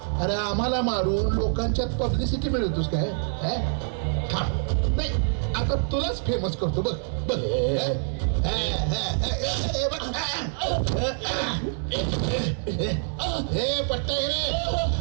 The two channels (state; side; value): silent; left; 61 dB below the other